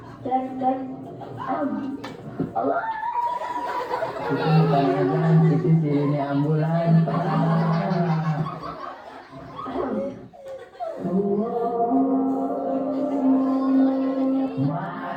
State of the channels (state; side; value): identical; both; correlation 1.00